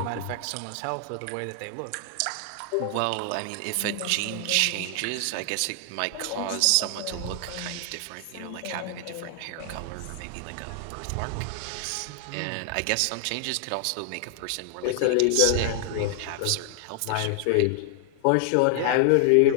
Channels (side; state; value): both; different; correlation 0.00